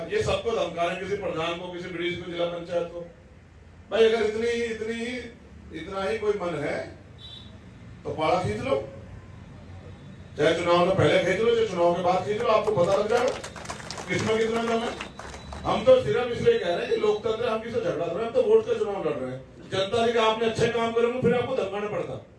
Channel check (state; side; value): identical; both; correlation 1.00